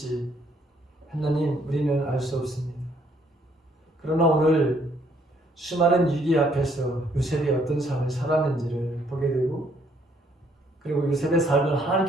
하나님 우리는 알 수 없습니다. 그러나 오늘 수많은 위기 앞에서 요셉이 어떤 삶을 살았는지를 보게 되고 그리고 요셉의 삶을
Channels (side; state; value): both; normal; correlation 0.67